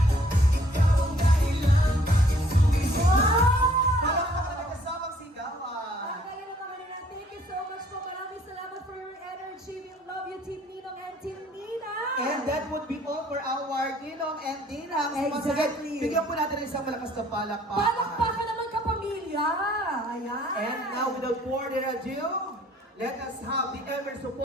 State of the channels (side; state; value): both; normal; correlation 0.60